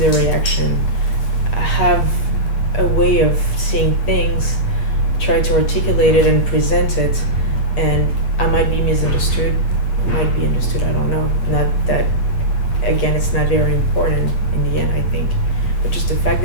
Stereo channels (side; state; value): right; late; 8.3 ms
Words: reaction. I have a way of seeing things, try to articulate it and present it, and I might be misunderstood, I might be understood, I don't know. Not that, again, it's not very important in the end, I think, but just the fact